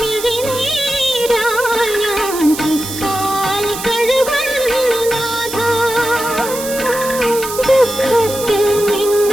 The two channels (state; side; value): noise; right; hiss, 8 dB below the sound